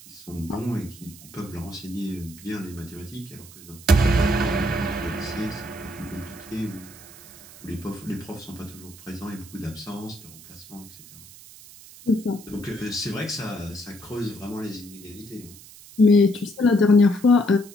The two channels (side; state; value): right; noise; hiss, 19 dB below the sound